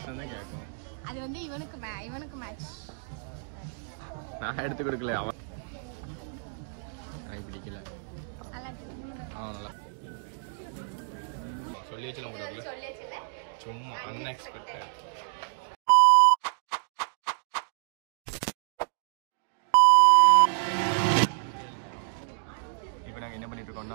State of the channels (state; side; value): silent; left; digital silence